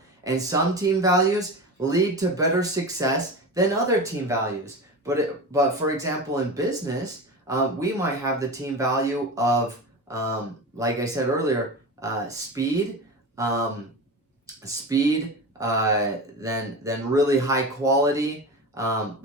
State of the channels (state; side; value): normal; both; correlation 0.27